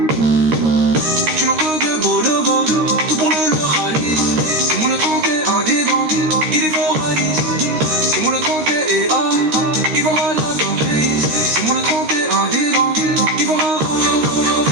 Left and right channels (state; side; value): late; left; 13 ms